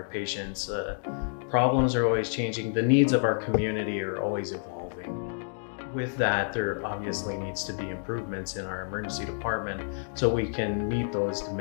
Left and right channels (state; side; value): silent; right; digital silence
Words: patients' problems are always changing. The needs of our community are always evolving. With that, there obviously needs to be improvements in our emergency department so we can meet those